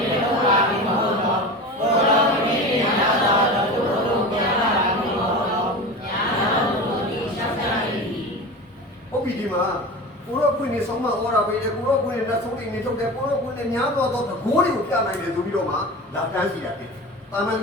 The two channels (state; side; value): normal; both; correlation 0.30